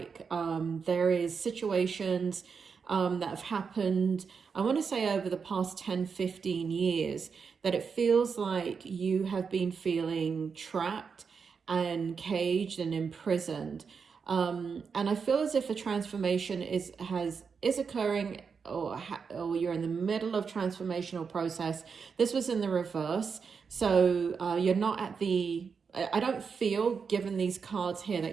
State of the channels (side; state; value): left; quieter; 5.8 dB